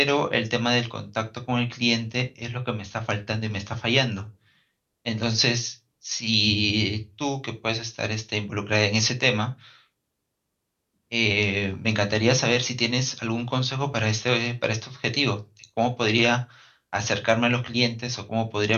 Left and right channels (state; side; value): identical; both; correlation 1.00